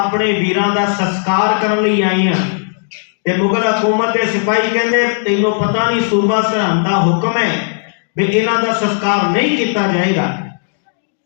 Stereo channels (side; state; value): right; silent; digital silence